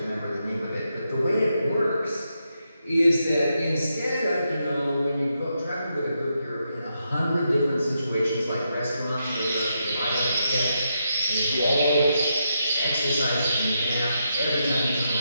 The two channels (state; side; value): inverted; both; correlation -0.83